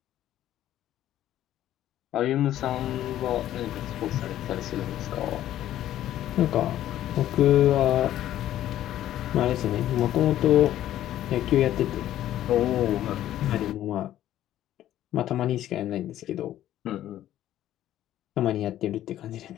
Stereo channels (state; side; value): quieter; right; 12.7 dB